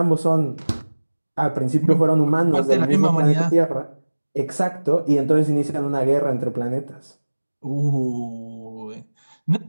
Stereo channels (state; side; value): inverted; both; correlation -1.00